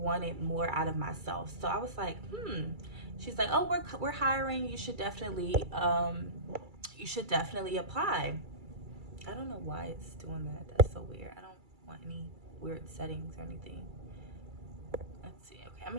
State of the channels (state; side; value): late; left; 2.3 ms